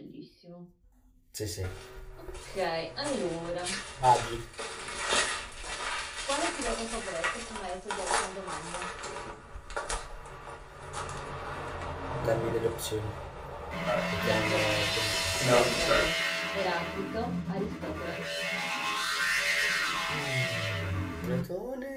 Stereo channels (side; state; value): both; identical; correlation 1.00